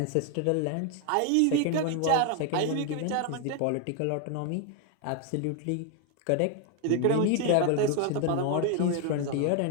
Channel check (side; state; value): both; different; correlation 0.01